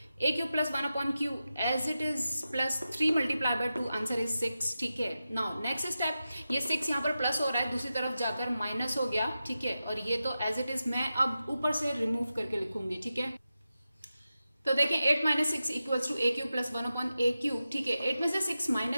a cube plus 1 upon q as it is plus 3 multiply by 2, answer is 6, ठीक है। नाउ नेक्स्ट स्टेप, ये 6 यहाँ पर प्लस हो रहा है, दूसरी तरफ जाकर माइनस हो गया, ठीक है, और ये तो एज इट इज मैं अब ऊपर से रिमूव करके लिखूंगी, ठीक है। तो देखिए 8 minus 6 equals to a cube plus 1 upon a cube, ठीक है। 8 में से 6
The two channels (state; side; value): inverted; both; correlation -0.92